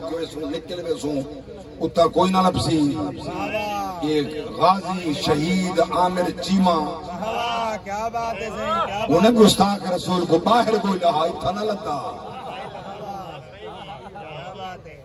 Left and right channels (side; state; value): both; identical; correlation 1.00